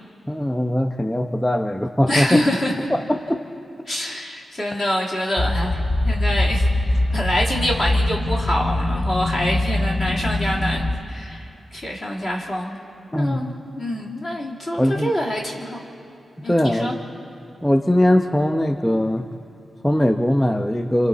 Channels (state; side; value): normal; both; correlation 0.95